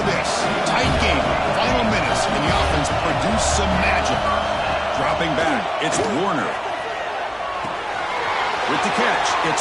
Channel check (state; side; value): identical; both; correlation 1.00